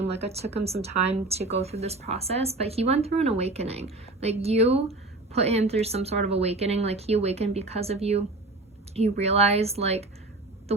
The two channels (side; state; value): left; quieter; 3.0 dB